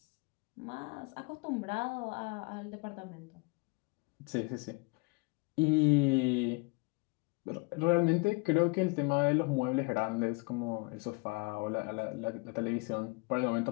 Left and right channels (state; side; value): quieter; right; 27.9 dB